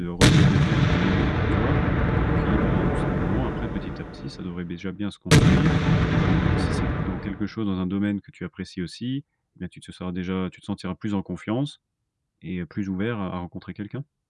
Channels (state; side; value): identical; both; correlation 1.00